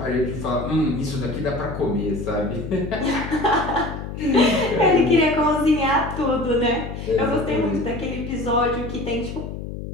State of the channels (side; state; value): left; noise; hum, 8 dB below the sound